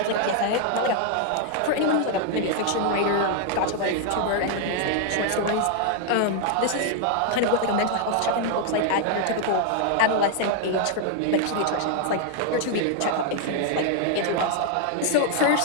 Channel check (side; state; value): both; different; correlation 0.00